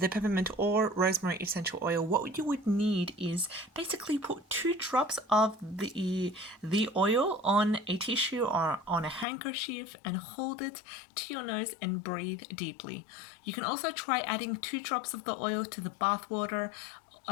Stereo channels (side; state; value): right; drops out; at 9.2 s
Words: peppermint or rosemary essential oil, what you would need is basically put 2 drops of the oil on a tissue or on a handkerchief and hold it to your nose and breathe deeply. You can also try adding 2 drops of the oil to the bath water.